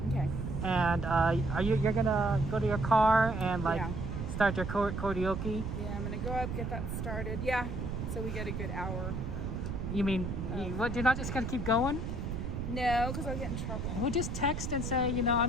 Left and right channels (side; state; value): right; noise; rumble, 4 dB below the sound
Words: Okay. And you're gonna go to your car and start your karaoke? Yeah, I'm gonna go up, get that started. Yeah. So we get a good hour. You mean you're not just gonna keep going? No, because I'll get in trouble. We'll just text and say, you know,